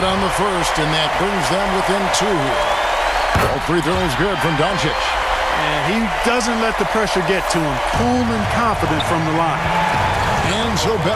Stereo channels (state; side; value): identical; both; correlation 1.00